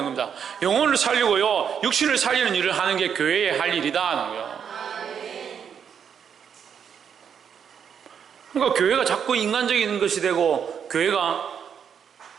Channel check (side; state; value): left; quieter; 7.7 dB